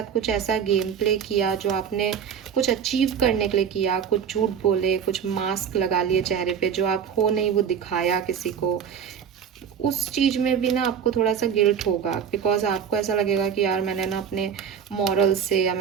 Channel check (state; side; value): quieter; left; 7.8 dB